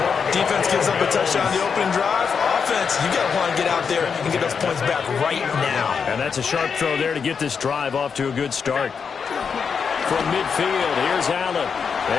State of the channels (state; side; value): quieter; right; 6.2 dB